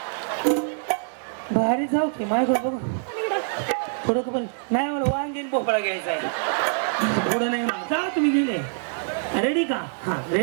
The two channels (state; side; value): silent; left; digital silence